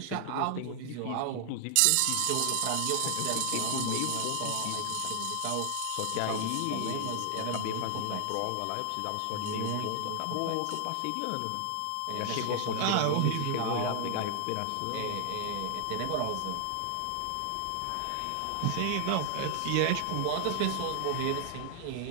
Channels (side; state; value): both; different; correlation 0.00